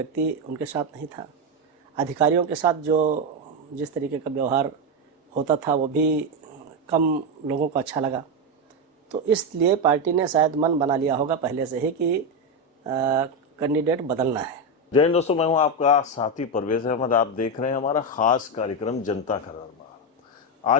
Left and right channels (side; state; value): both; normal; correlation 0.09